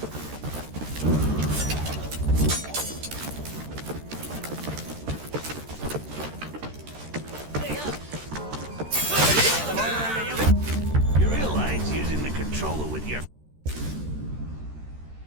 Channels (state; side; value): late; left; 13 ms